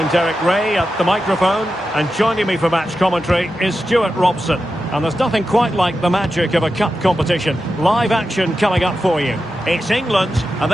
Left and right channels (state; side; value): normal; both; correlation 0.90